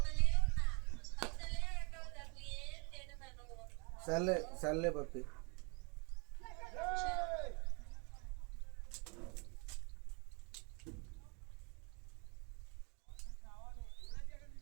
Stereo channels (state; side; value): quieter; left; 32.0 dB